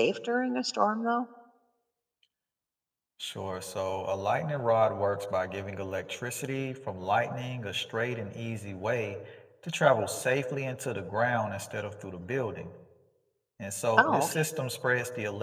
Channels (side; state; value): both; identical; correlation 1.00